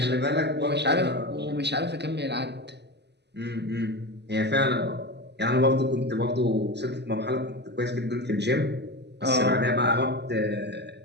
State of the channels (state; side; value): late; left; 0.50 ms